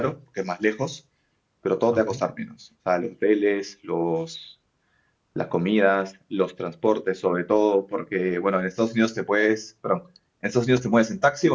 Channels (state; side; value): identical; both; correlation 1.00